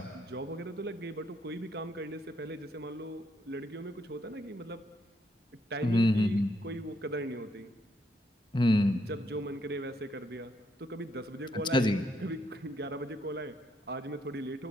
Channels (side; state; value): both; normal; correlation 0.75